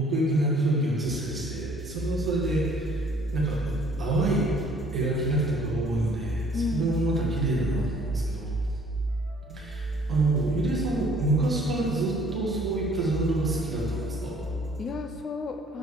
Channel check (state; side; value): normal; both; correlation 0.58